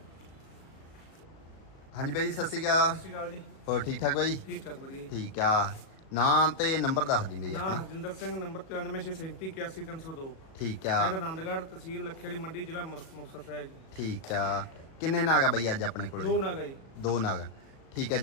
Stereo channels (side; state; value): right; late; 37 ms